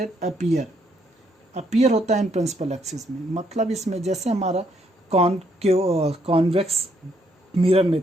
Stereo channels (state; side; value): normal; both; correlation 0.72